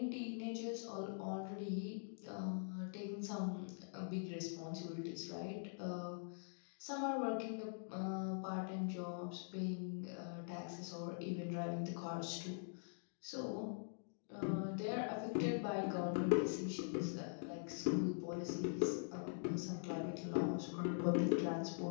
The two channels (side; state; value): right; silent; digital silence